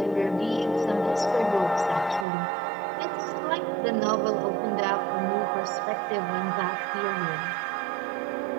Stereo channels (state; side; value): drops out; left; at 2.2 s